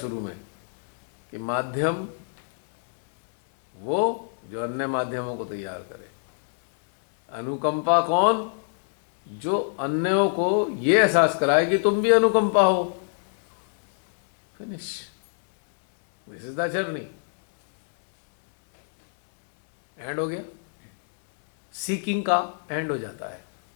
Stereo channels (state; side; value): silent; right; 62 dB below the other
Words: में कि माध्यम वो जो अन्य माध्यमों को तैयार करे, अनुकंपा कौन? जो अन्यों को ये एहसास कराए कि तुम भी अनुकंपा हो। Finish, this is the journey. And हो गया, सीकिंग का एंड हो जाता है,